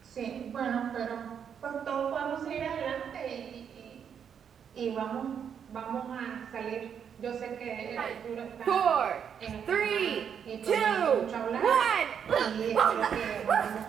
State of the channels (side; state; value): left; quieter; 7.8 dB